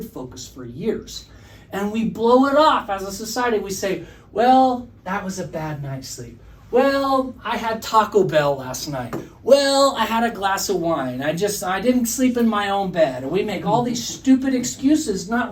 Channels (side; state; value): both; identical; correlation 1.00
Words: focus for years. And we blow it off as a society. We say, well, that was a bad night's sleep. Well, I had Taco Bell last night. Well, I had a glass of wine. I didn't sleep in my own bed. And we make all these stupid excuses,